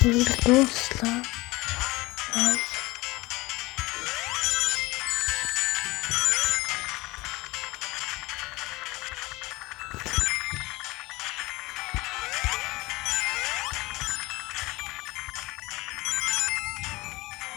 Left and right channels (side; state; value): right; quieter; 21.4 dB